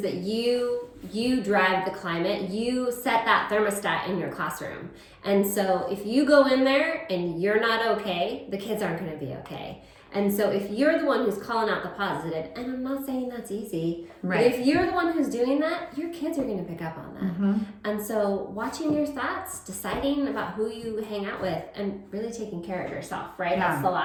that you drive the climate. You set that thermostat in your classroom. And so if you go in there and you're not okay, the kids aren't going to be okay. And so if you're the one who's calling out the positive, and I'm not saying that's easy, but if you're the one who's doing that, your kids are going to pick up on that. And so watching your thoughts, deciding about who you hang out with, and really taking care of yourself, right? That's the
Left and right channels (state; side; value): identical; both; correlation 1.00